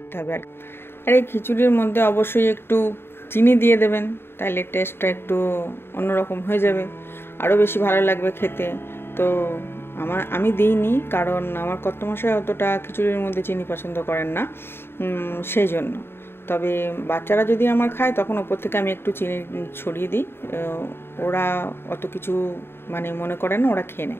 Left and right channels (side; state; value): right; late; 0.11 ms